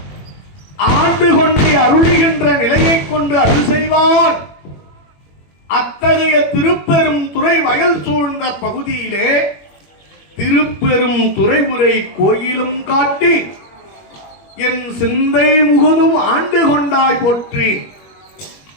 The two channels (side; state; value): right; late; 21 ms